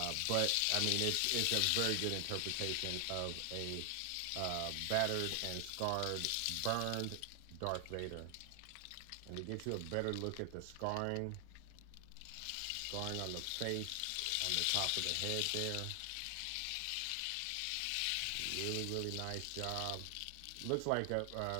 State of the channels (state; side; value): different; both; correlation 0.00